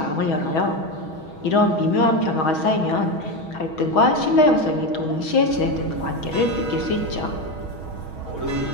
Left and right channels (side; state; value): right; late; 6.3 ms